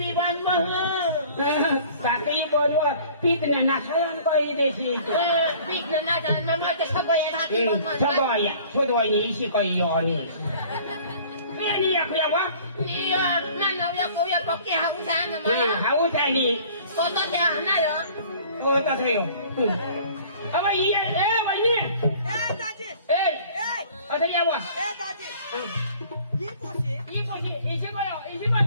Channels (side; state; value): both; inverted; correlation -0.50